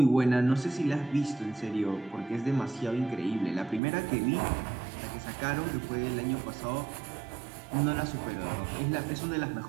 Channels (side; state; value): left; drops out; at 3.8 s